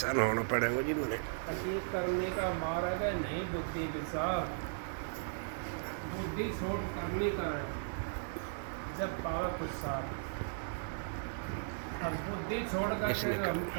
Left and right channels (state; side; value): silent; left; digital silence